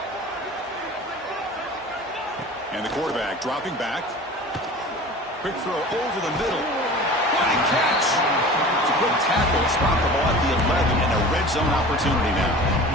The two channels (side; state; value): both; normal; correlation 0.39